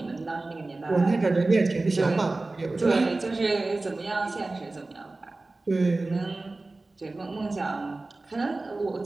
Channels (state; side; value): quieter; left; 3.2 dB